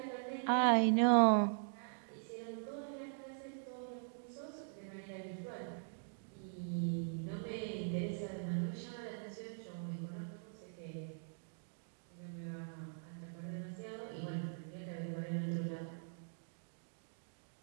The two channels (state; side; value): silent; left; digital silence